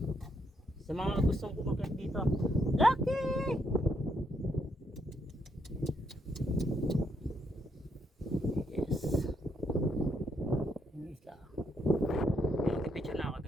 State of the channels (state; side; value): normal; both; correlation 0.75